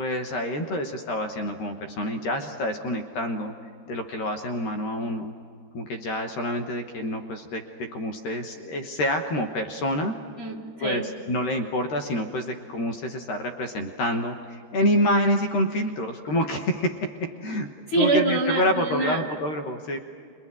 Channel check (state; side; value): late; right; 13 ms